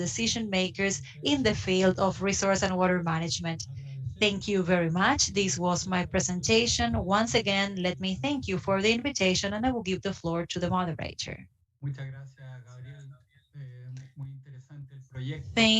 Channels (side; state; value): both; identical; correlation 1.00